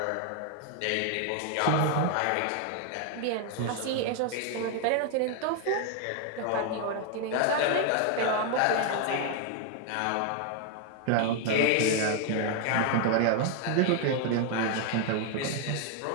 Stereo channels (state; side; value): different; both; correlation 0.00